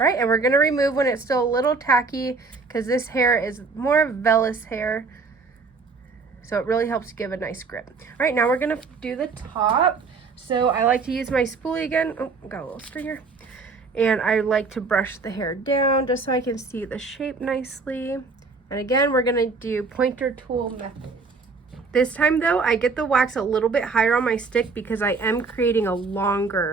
right, and we're gonna remove when it's still a little tacky, because this hair is more vellus hair, so it really helps give a nice grip. All right, now we're gonna do the top. So I like to use my spoolie again. Oh, got a little stringer. And I like to brush the hair down just so I can see the shape nicely. And again, we're gonna do pointer tool method. This time though, I get the wax a little bit higher on my stick because I am creating a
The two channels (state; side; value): quieter; left; 4.4 dB